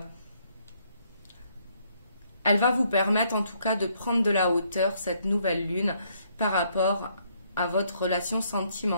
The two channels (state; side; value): inverted; both; correlation -0.69